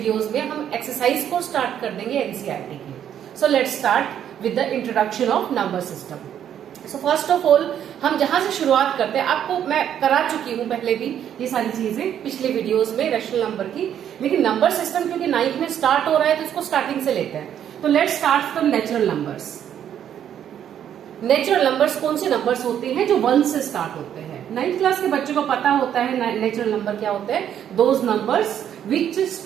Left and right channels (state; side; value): quieter; left; 9.7 dB